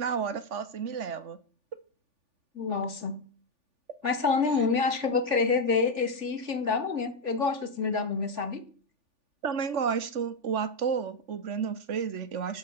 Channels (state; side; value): late; left; 3.4 ms